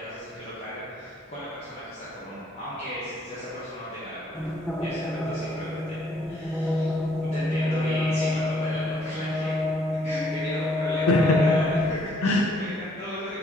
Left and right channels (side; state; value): both; normal; correlation 0.65